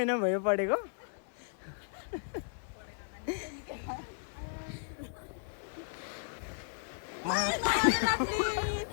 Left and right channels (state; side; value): silent; right; digital silence